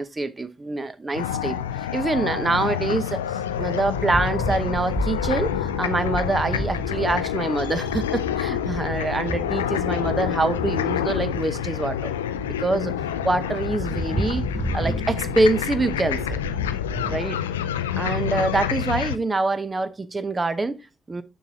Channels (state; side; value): normal; both; correlation 0.52